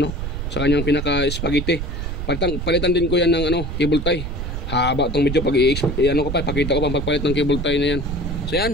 sa kanyang pinaka-spaghetti. Palitan din ko yan ng cable tie. Haba itong medyo pag pakita ko pa pagpalit ng cable tie na yan. So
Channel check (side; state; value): right; noise; rumble, 4 dB below the sound